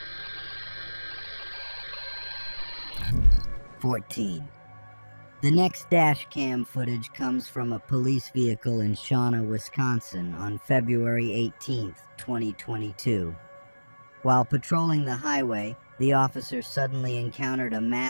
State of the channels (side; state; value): both; inverted; correlation -1.00